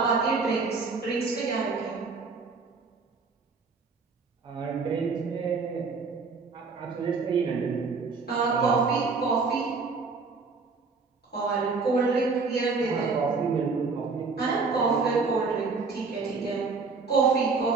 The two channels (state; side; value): quieter; left; 4.5 dB